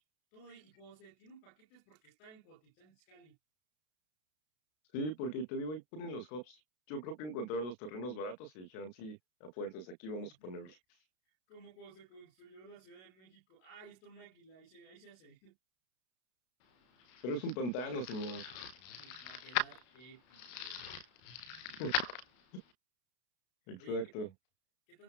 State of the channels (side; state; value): right; late; 32 ms